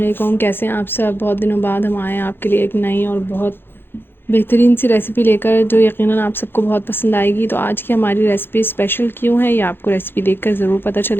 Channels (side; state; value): right; late; 0.10 ms